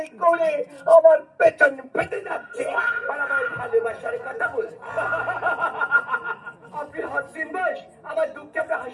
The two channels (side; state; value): both; identical; correlation 1.00